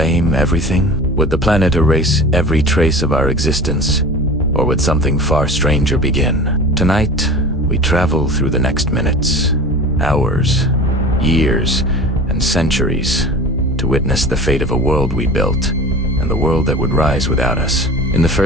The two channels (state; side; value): normal; both; correlation 0.37